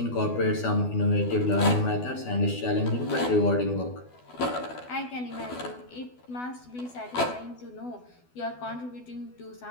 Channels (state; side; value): late; right; 12 ms